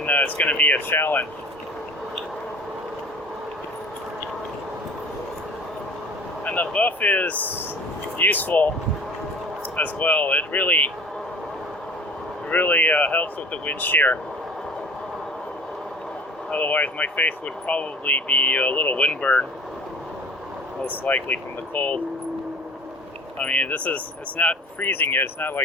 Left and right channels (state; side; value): normal; both; correlation 0.43